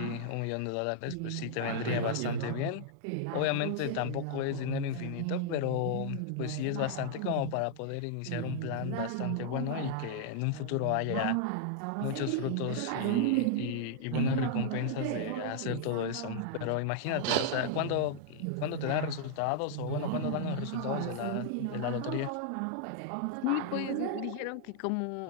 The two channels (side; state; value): both; different; correlation -0.01